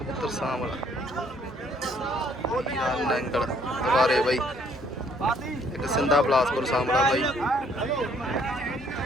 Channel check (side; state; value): both; normal; correlation 0.64